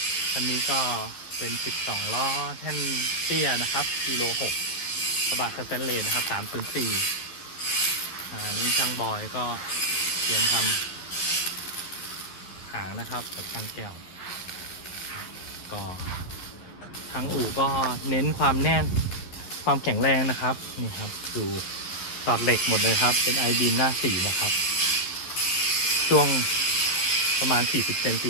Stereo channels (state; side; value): late; right; 11 ms